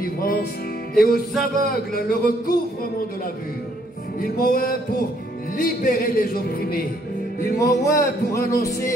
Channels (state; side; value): normal; both; correlation 0.67